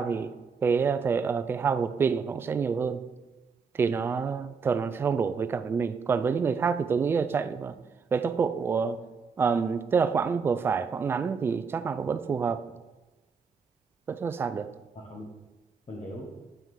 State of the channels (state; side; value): quieter; left; 5.5 dB